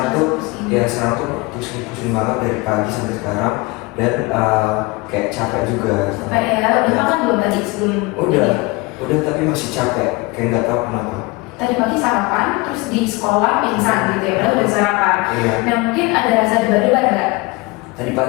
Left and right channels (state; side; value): quieter; right; 23.9 dB